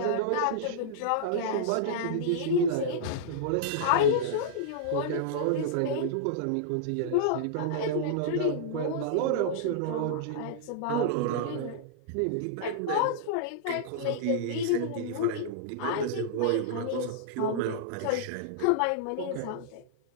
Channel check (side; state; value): both; different; correlation -0.02